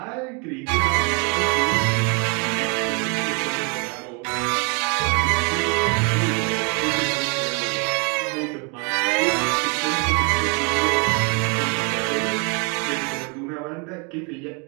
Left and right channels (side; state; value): left; quieter; 35.0 dB